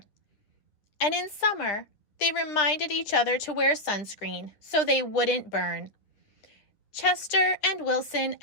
And in summer, they reminded each other to wear sunscreen so they wouldn't burn. Chester and Wilson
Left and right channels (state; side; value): late; right; 9.9 ms